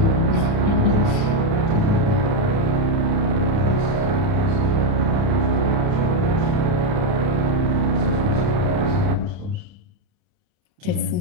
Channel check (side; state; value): left; late; 29 ms